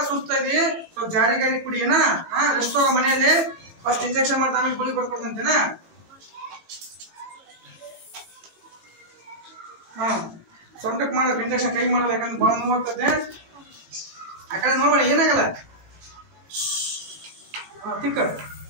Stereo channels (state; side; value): late; left; 19 ms